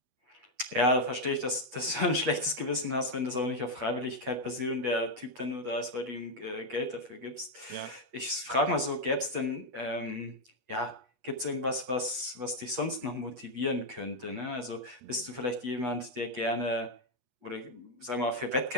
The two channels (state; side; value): late; left; 8.2 ms